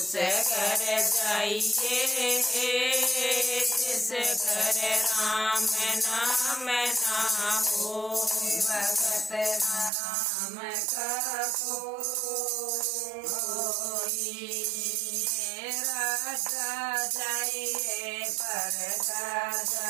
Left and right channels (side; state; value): left; drops out; at 9.9 s